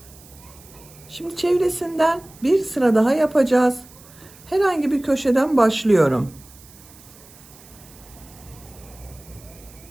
Şimdi çevresinden bir sıra daha yapacağız. Herhangi bir köşeden başlıyorum.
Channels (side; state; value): right; noise; hiss, 23 dB below the sound